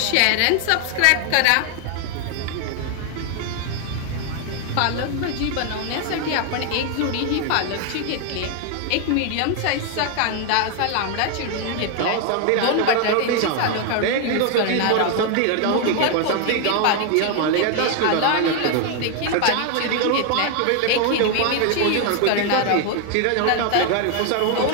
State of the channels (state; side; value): different; both; correlation 0.01